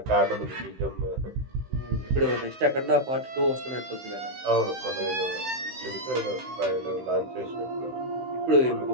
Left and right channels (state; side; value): late; left; 16 ms